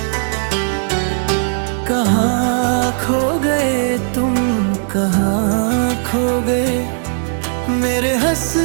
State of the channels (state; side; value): silent; left; 68 dB below the other